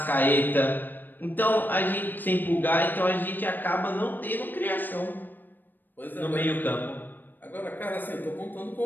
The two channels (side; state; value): right; late; 0.091 ms